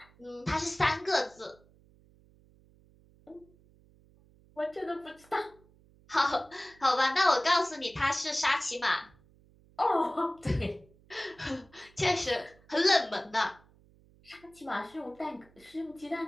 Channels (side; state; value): right; noise; hum, 28 dB below the sound